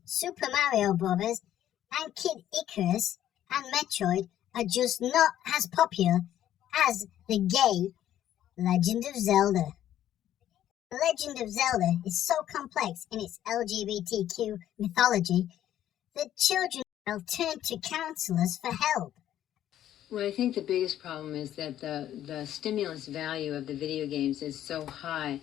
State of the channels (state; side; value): quieter; right; 11.8 dB